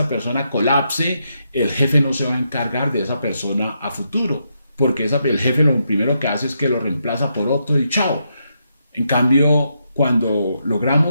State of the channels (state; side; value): inverted; both; correlation -0.81